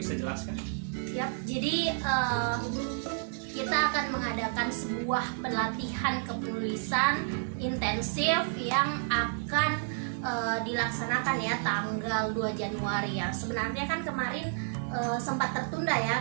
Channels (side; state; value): left; silent; 57 dB below the other